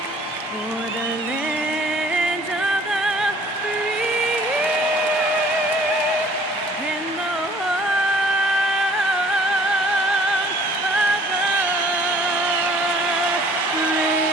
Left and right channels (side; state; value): both; normal; correlation 0.55